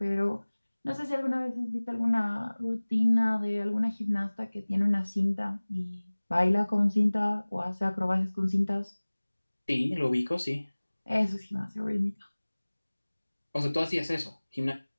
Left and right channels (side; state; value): both; inverted; correlation -1.00